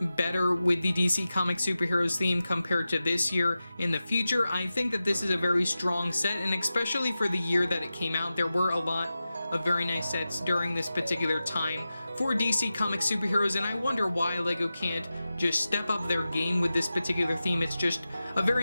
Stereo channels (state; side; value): inverted; both; correlation -0.94